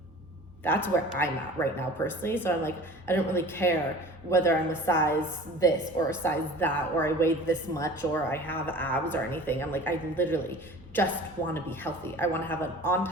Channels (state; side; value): normal; both; correlation 0.43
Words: that's where I'm at right now personally. So I'm like, I don't really care whether I'm a size this or a size that, or I weigh this much, or I have abs or anything. I'm like, I literally just want to be healthy. I want to have an